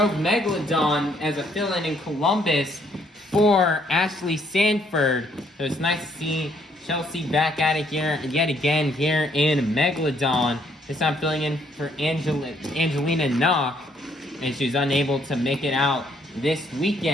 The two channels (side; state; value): both; normal; correlation 0.68